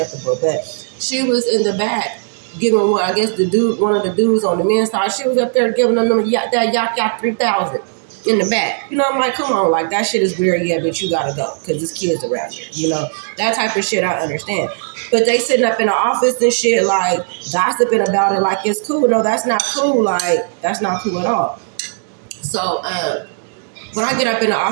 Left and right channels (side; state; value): left; silent; digital silence